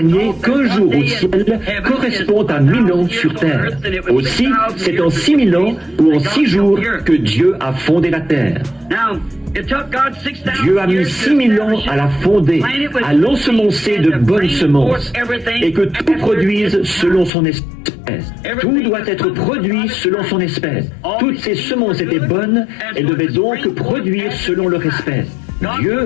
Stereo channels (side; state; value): right; drops out; at 17.3 s